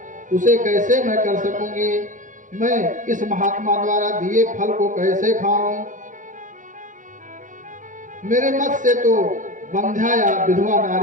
उसे कैसे मैं कर सकूंगी। मैं इस महात्मा द्वारा दिए फल को कैसे खाऊं। मेरे मत से तो बंध्या या विधवा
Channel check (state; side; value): late; left; 0.37 ms